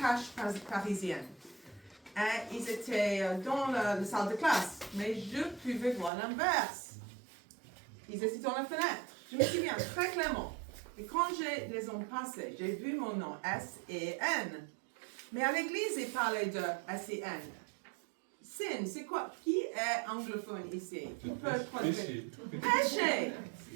parisiennes. Et ils étaient dans la salle de classe, mais je pouvais voir l'inverse. Ils étaient dans la fenêtre. Je me souviens très clairement. Et quand je les ai passés, j'ai vu mon nom, S-E-N. Mais à l'église, ils parlaient de S-E-N. Sin, c'est quoi? Qui est anglophone ici? Qui peut traduire? Péché.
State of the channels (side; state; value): left; drops out; at 6.1 s